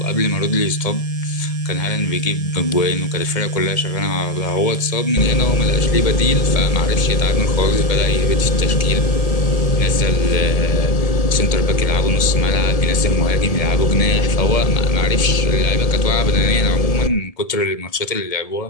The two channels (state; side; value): late; right; 1.7 ms